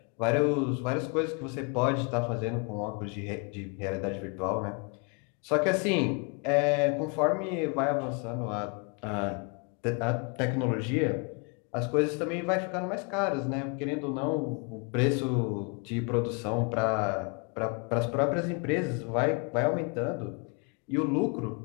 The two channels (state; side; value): quieter; right; 34.0 dB